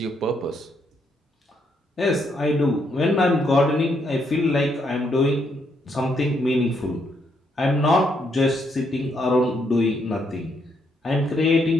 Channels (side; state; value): both; normal; correlation 0.75